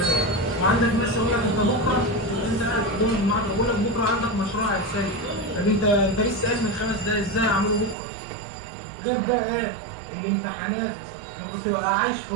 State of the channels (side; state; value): left; drops out; at 8.0 s